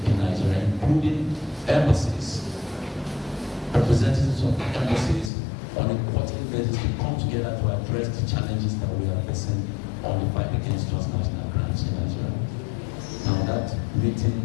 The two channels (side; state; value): right; drops out; at 5.3 s